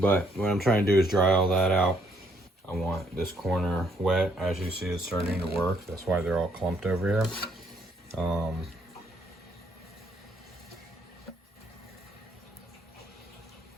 what I'm trying to do is dry all that out. I want this corner wet. As you see, it's starting to work. That's why they're all clumped over here.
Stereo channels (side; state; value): both; normal; correlation 0.70